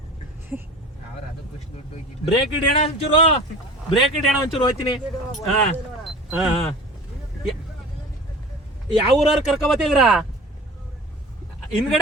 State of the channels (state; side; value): normal; both; correlation 0.39